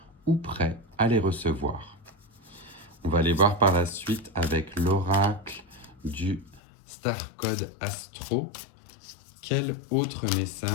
ou prêt à les recevoir. On va aller voir par la suite avec l'oracle du Star Code Astro. Quel autre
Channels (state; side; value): drops out; right; at 6.6 s